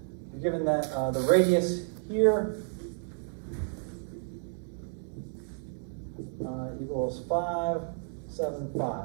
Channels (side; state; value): left; silent; 57 dB below the other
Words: you're given that the radius here equals